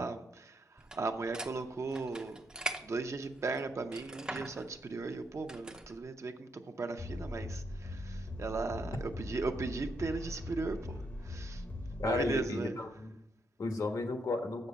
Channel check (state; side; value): normal; both; correlation 0.77